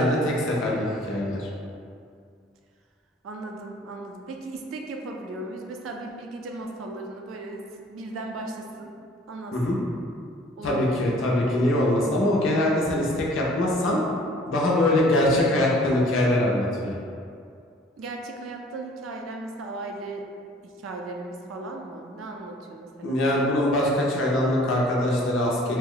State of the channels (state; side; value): normal; both; correlation 0.53